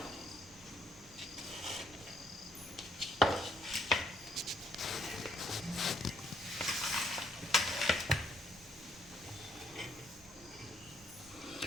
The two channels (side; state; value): both; normal; correlation 0.68